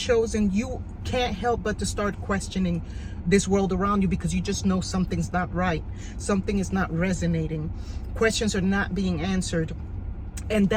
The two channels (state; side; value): identical; both; correlation 1.00